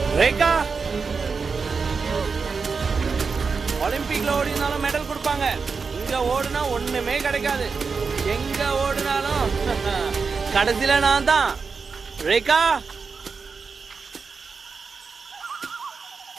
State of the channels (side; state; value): left; quieter; 5.1 dB